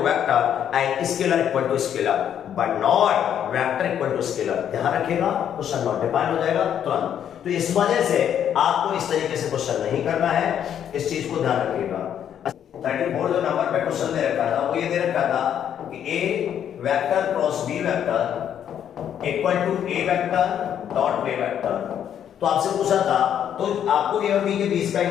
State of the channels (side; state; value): right; quieter; 9.4 dB